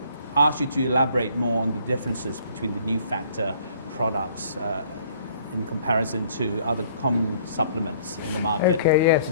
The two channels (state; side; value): inverted; both; correlation -0.58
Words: ask you to elaborate more on the differences between the new factor products in comparison to other common supplements in the market. Okay, yes,